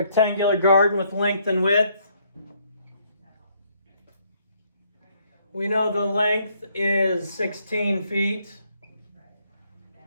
garden with length and width. We know the length is 16 feet.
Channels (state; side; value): inverted; both; correlation -0.69